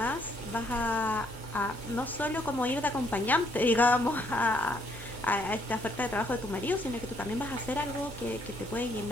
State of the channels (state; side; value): normal; both; correlation 0.69